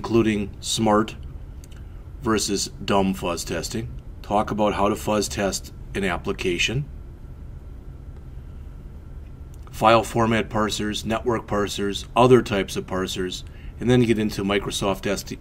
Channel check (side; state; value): both; identical; correlation 1.00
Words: smart versus dumb fuzz testing. Talk about how to fuzz test an application, file format parsers, network parsers, other types of parsers, and then get into Microsoft